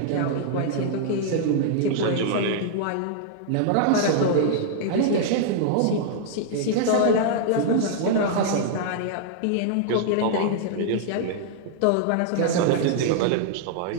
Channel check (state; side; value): different; both; correlation -0.01